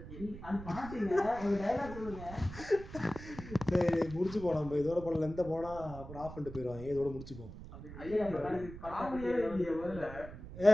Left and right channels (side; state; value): right; noise; rumble, 13 dB below the sound